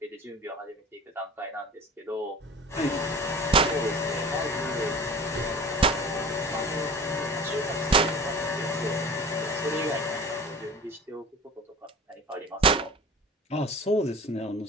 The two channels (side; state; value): both; normal; correlation 0.39